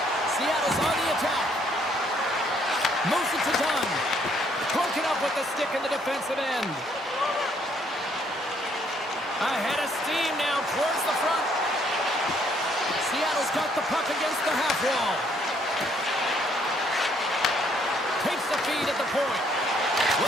Seattle's on the attack. Moves it to Dunn. Broken up with the stick in the defensive end. Ahead of steam now towards the front. Seattle's got the puck against the half wall. Takes the feed at the point.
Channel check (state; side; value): normal; both; correlation 0.67